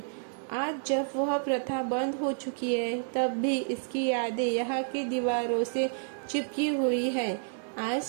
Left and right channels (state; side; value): silent; left; 58 dB below the other